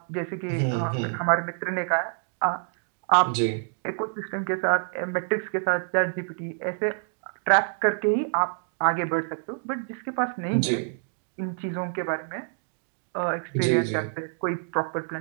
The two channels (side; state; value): left; silent; digital silence